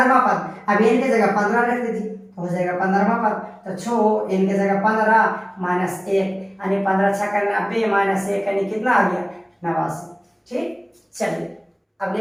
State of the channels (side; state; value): both; identical; correlation 1.00